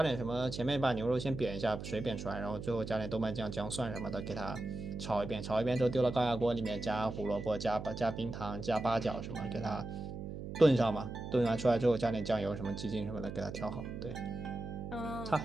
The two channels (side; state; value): right; noise; hum, 8 dB below the sound